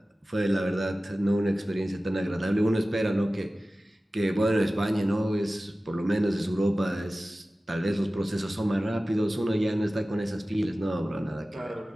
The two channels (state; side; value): normal; both; correlation 0.96